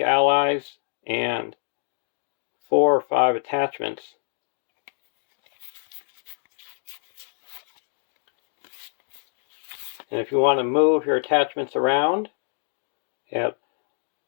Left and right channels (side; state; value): right; silent; digital silence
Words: allies and 4 or 5 attachments. And if you want to move your attachments around, you have